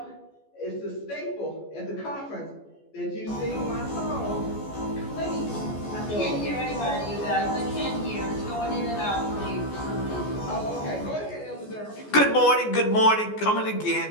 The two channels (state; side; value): late; right; 14 ms